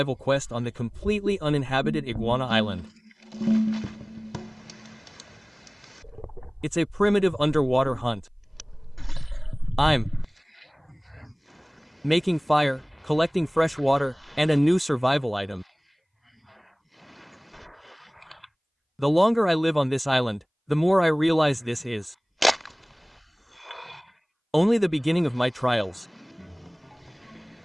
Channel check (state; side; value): identical; both; correlation 1.00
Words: quest on the completely uninhabited Iguana Island. It's a primitive underwater hunt. I'm making fire, collecting fresh water, and a new survival item. The longer I live on this island, the more I realize this is only the beginning of my trials.